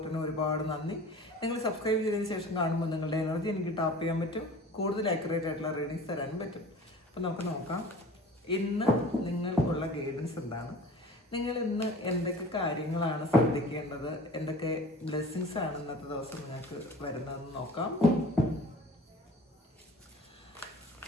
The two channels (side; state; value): both; normal; correlation 0.43